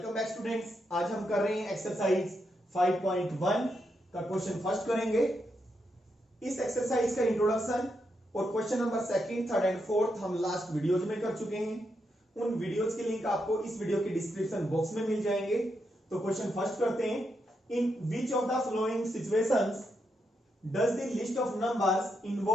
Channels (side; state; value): both; normal; correlation 0.82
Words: back students. आज हम कर रहे हैं एक्सरसाइज 5.1 का क्वेश्चन फर्स्ट करेंगे। इस एक्सरसाइज का इंट्रोडक्शन और question number second, third and fourth हम लास्ट वीडियोज में कर चुके हैं। उन वीडियोज के लिंक आपको इस वीडियो के डिस्क्रिप्शन बॉक्स में मिल जाएंगे। तो क्वेश्चन फर्स्ट करते हैं। In which of the following situations does the list of numbers